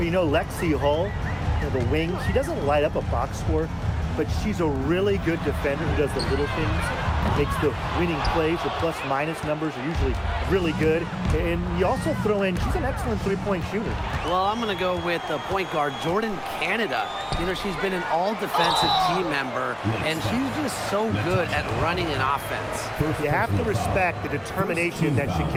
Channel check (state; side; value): identical; both; correlation 1.00